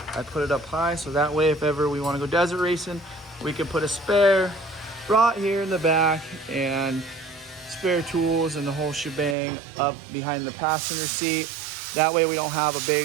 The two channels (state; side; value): drops out; left; at 9.3 s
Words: I put it up high so that way if ever we want to go desert racing, we can put a spare right here in the back and spare tools and the whole shebang up behind the passenger seat. That way we don't have a